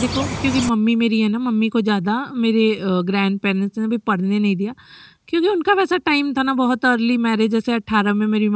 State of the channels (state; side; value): identical; both; correlation 1.00